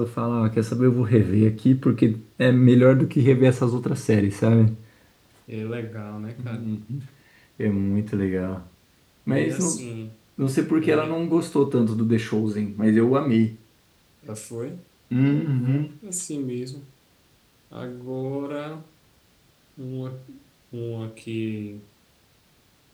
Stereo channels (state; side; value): identical; both; correlation 1.00